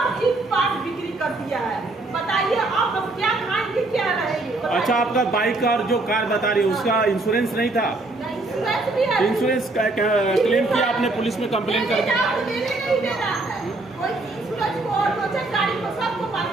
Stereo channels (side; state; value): left; quieter; 3.0 dB